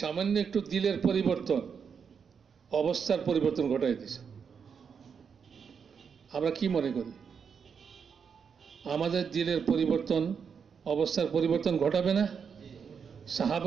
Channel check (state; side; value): quieter; left; 6.5 dB